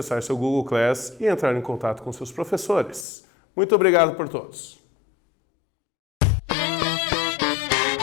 seu Google Class e entrar em contato com seus professores. Muito obrigado por todos.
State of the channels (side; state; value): right; drops out; at 3.1 s